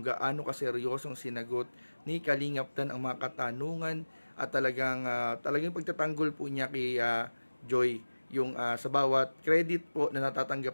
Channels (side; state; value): both; inverted; correlation -1.00